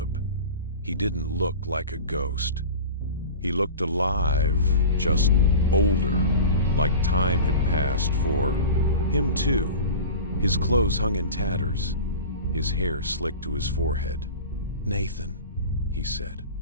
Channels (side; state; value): both; inverted; correlation -0.33